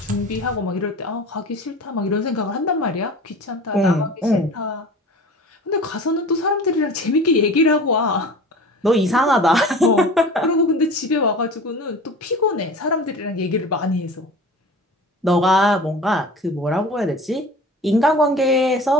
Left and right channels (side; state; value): both; normal; correlation 0.38